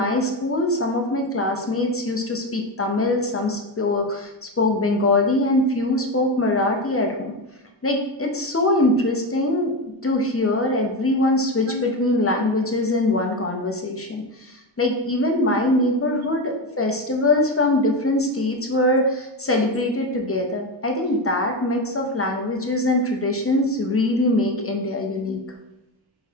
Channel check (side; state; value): both; normal; correlation 0.17